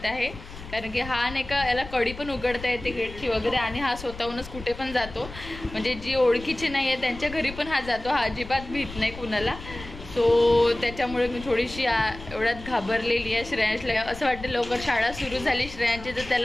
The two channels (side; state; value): left; noise; rumble, 14 dB below the sound